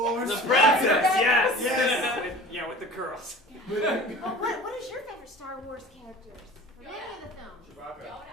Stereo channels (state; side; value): normal; both; correlation 0.41